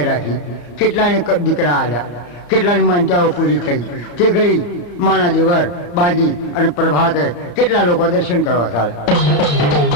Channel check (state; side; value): late; right; 34 ms